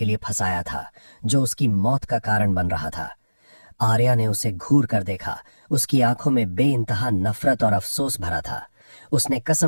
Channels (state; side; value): inverted; both; correlation -1.00